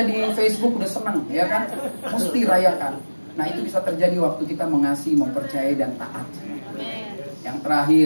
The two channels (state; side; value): inverted; both; correlation -1.00